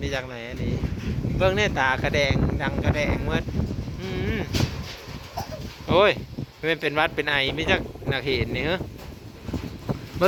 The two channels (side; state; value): both; identical; correlation 1.00